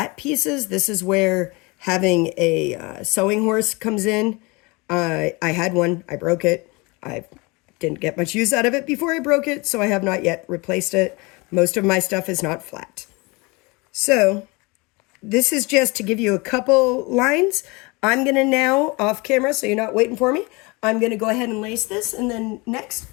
pieces, this is where having a sewing horse comes in. I had one, I broke it. I didn't get much use out of it before I broke it, so I have not yet replaced it. Most of my stuff is not flat. So this is just to give you a couple lines. I'm going to now, off camera, so you're not waiting for me, I'm going to go ahead and lace this, and then next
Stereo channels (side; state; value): right; quieter; 26.3 dB